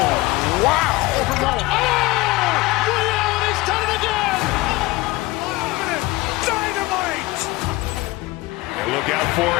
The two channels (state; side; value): quieter; right; 20.7 dB